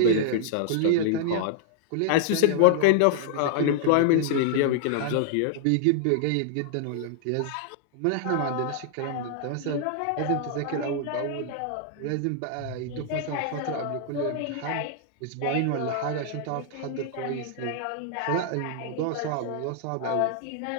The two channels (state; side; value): different; both; correlation -0.01